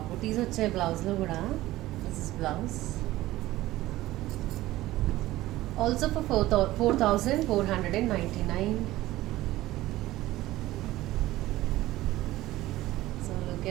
Butis వచ్చాయి బ్లౌజ్లో కూడా. This is blouse. Also for 4499. So look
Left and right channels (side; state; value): left; quieter; 16.5 dB